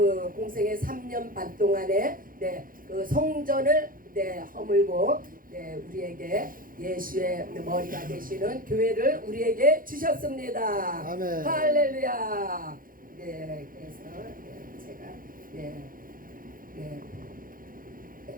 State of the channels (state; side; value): late; left; 0.41 ms